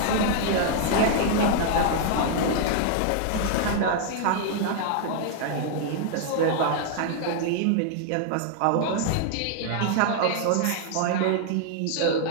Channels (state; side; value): different; both; correlation 0.00